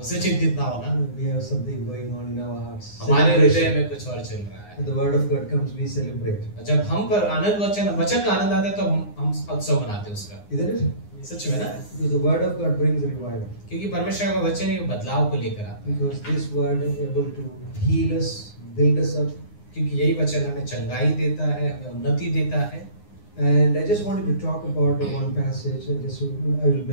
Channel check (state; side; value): late; right; 9.7 ms